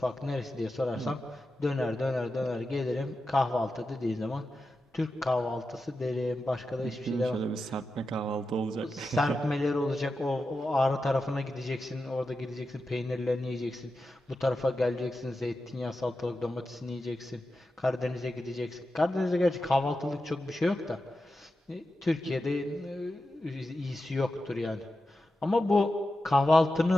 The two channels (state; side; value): normal; both; correlation 0.91